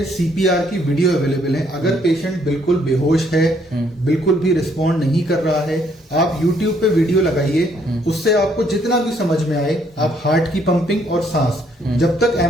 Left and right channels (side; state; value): both; normal; correlation 0.68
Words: CPR की वीडियो अवेलेबल है। अगर पेशेंट बिल्कुल बेहोश है, बिल्कुल भी रिस्पॉन्ड नहीं कर रहा है, आप YouTube पे वीडियो लगाइए, उससे आपको जितना भी समझ में आए, आप हार्ट की पंपिंग और सांस, जब तक